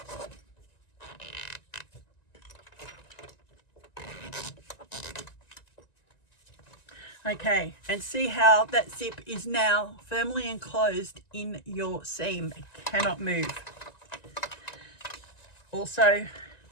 okay, and see how that zip is now firmly enclosed in your seam. It cannot move. Also,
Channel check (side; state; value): right; late; 1.9 ms